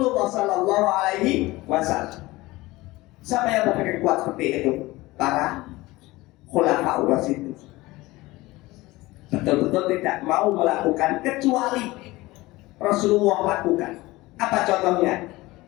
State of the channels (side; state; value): right; quieter; 19.9 dB